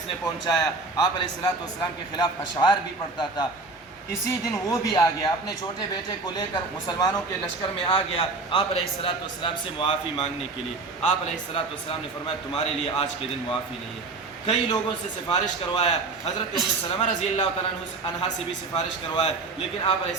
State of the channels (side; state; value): left; quieter; 3.7 dB